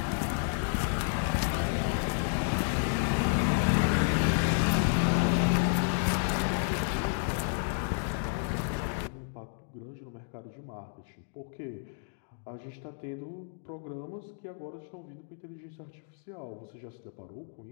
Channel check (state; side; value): silent; right; digital silence